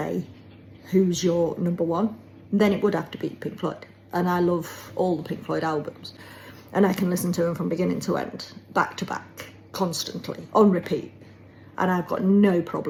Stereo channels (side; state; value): both; identical; correlation 1.00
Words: who's your number one, then it would have to be Pink Floyd. And I love all the Pink Floyd albums. And I can listen to them from beginning to end, back to back, constantly, on repeat. And I've got no